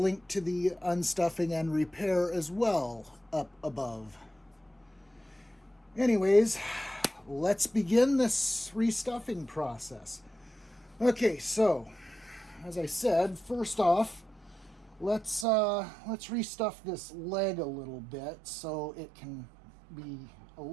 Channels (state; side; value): drops out; left; at 15.5 s